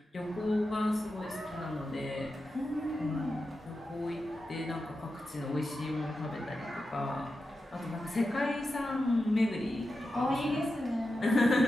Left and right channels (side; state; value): both; normal; correlation 0.90